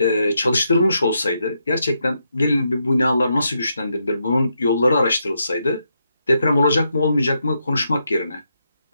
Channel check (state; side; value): inverted; both; correlation -0.81